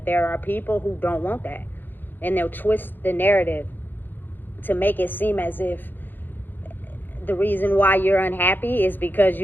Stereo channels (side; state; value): right; late; 0.091 ms